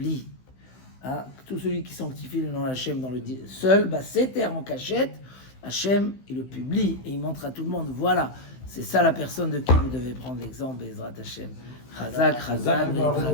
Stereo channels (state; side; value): late; right; 15 ms